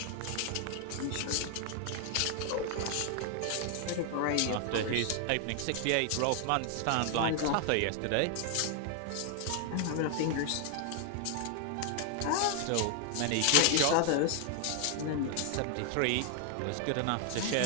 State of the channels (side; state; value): both; different; correlation 0.00